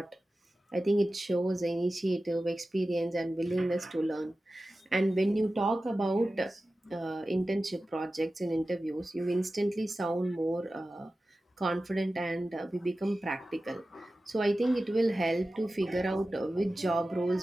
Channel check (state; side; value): normal; both; correlation 0.95